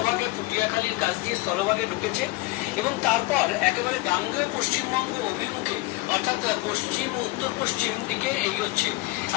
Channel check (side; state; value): right; quieter; 20.9 dB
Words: পুটিয়াখালীর কাছ দিয়ে স্থলভাগে ঢুকেছে এবং তারপর একেবারে গাঙ্গেয় পশ্চিমবঙ্গ অভিমুখে অর্থাৎ পশ্চিম ও উত্তর পশ্চিম দিকে এগোচ্ছে।